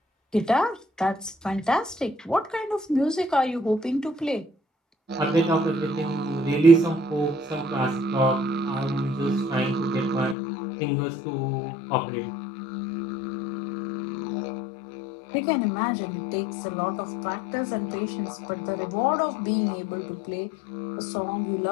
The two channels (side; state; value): right; drops out; at 10.4 s